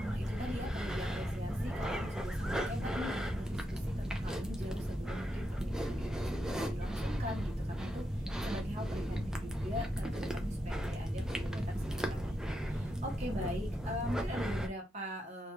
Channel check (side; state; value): both; normal; correlation 0.84